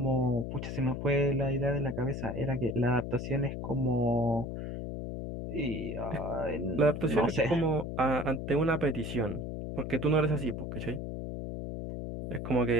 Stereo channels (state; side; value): noise; left; hum, 6 dB below the sound